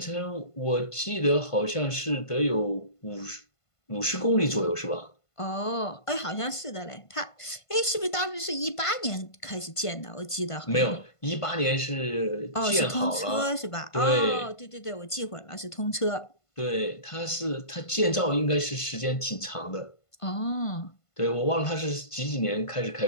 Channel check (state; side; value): late; right; 1.5 ms